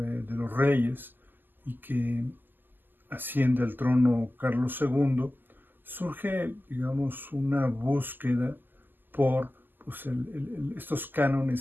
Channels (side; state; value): left; late; 0.090 ms